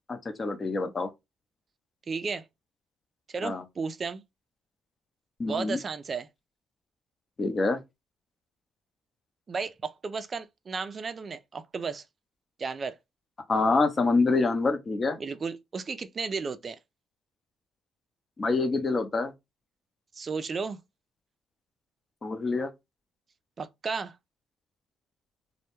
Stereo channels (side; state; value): both; normal; correlation 0.83